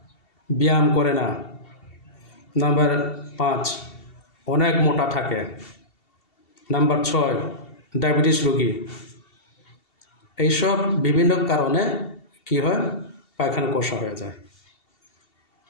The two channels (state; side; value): late; right; 2.7 ms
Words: ব্যায়াম করে না। নাম্বার 5, অনেক মোটা থাকে। নাম্বার 6, ডায়াবেটিস রোগী। এইসব বিভিন্ন কারণে কি হয়? পায়খানা কষা হয়ে যায়।